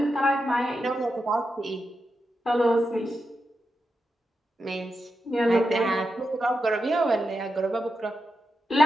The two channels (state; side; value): normal; both; correlation 0.88